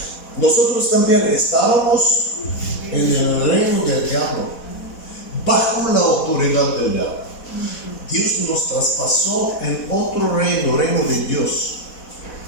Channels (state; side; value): late; right; 4.1 ms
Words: Nosotros también estábamos en el reino del diablo, bajo la autoridad del diablo. Dios nos traspasó en otro reino, reino de Dios.